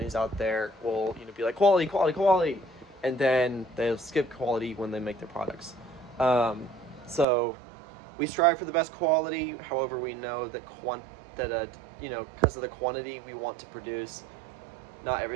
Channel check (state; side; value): drops out; left; at 7.2 s